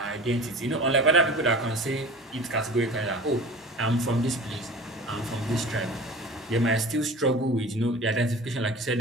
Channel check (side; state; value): both; normal; correlation 0.39